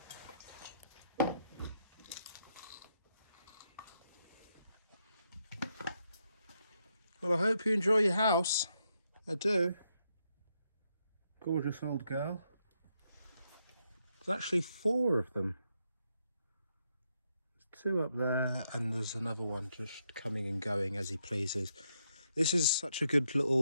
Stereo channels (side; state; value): both; inverted; correlation -0.79